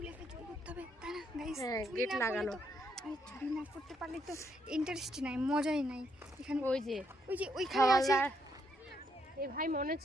হ্যাঁ, গেট লাগানো। চুরি না করতে পারলে তো ইন্টারেস্ট নাই, মজাই নাই এখানে। ওই যে ওইখানে আছে। এ ভাই মনে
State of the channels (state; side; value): normal; both; correlation 0.75